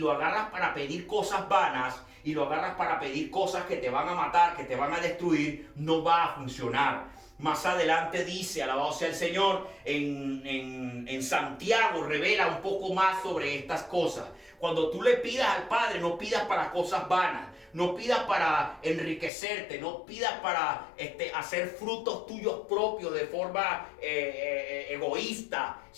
para pedir cosas vanas, y lo agarras para pedir cosas que te van a matar, que te van a destruir, no va a funcionar. Más adelante dice, alabado sea el Señor, en Santiago revela un poco más sobre estas cosas. Cuando tú le pidas al Padre, no pidas para cosas vanas, no pidas para enriquecerte, no pidas para hacer frutos tuyos propios de forma egoísta,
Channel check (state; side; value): drops out; right; at 19.3 s